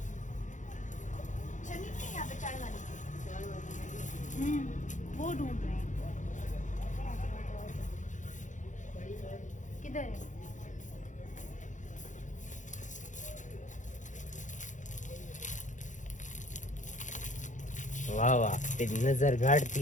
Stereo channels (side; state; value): right; late; 0.36 ms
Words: छन्नी नहीं यहाँ पे, चाय वाली। वो ढूंढ रहे हैं, किधर है? वाह वाह, तेरी नजर गाड़ थी